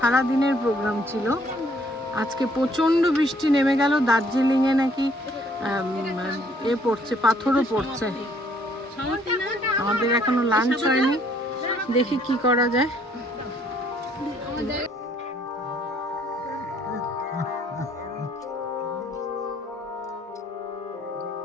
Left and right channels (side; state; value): both; normal; correlation 0.63